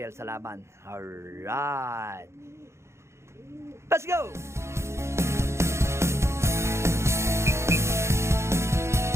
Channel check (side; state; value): left; late; 0.13 ms